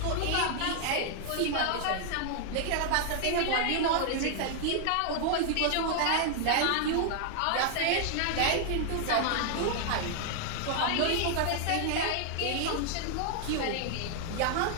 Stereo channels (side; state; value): both; different; correlation 0.00